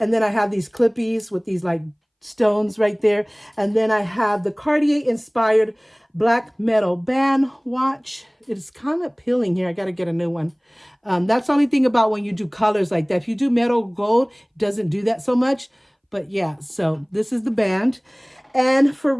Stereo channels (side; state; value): both; identical; correlation 1.00